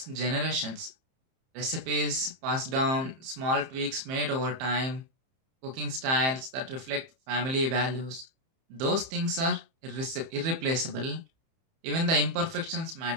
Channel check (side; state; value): left; late; 30 ms